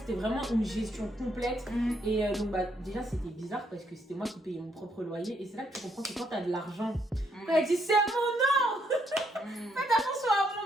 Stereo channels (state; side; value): normal; both; correlation 0.73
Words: vraiment une gestion complète. Et donc, déjà, c'était bizarre parce que c'était moi qui payais mon propre loyer. Et c'est là que tu comprends que quand t'as de l'argent, quand elle dit c'est à mon nom, faites attention à